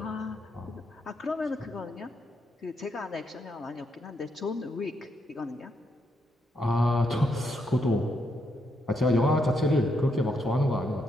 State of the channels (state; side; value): normal; both; correlation 0.79